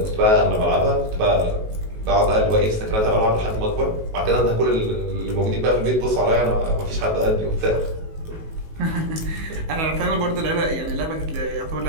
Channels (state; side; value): late; left; 19 ms